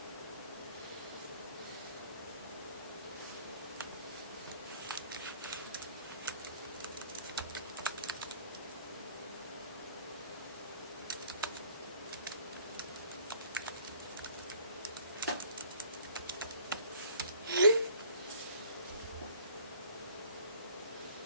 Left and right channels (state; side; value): inverted; both; correlation -0.53